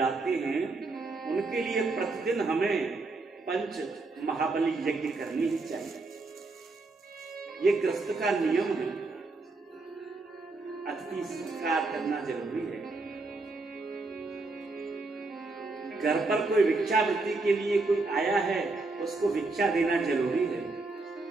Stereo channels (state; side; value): quieter; left; 3.5 dB